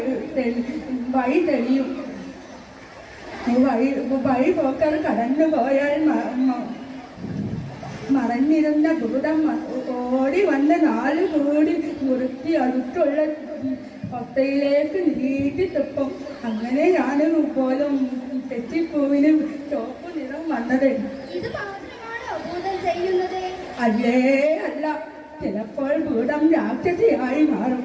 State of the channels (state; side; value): identical; both; correlation 1.00